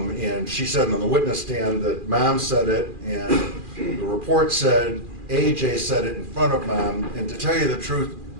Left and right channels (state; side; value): late; left; 2.4 ms